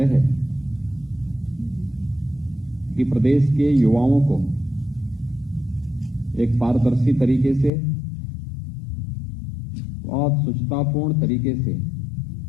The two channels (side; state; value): right; drops out; at 7.7 s